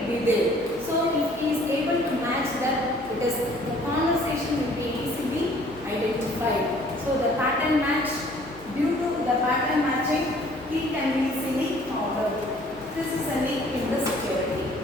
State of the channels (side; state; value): left; noise; hum, 23 dB below the sound